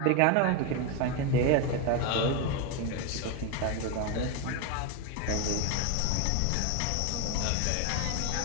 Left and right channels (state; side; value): different; both; correlation 0.02